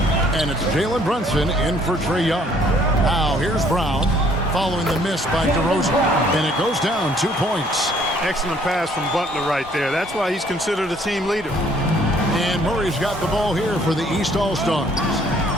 And it's Jalen Brunson in for Trae Young. Now here's Brown following the miss by DeRozan. And it goes down 2 points. Excellent pass from Butler right there. That's why he's considered a team leader. And Murray's got the ball here for the East All-Stars.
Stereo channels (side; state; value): both; normal; correlation 0.61